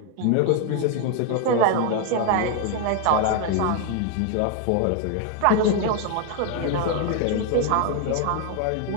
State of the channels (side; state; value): both; different; correlation 0.01